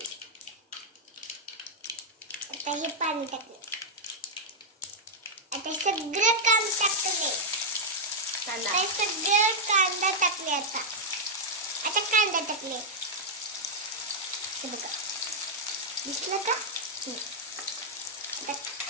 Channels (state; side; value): normal; both; correlation -0.03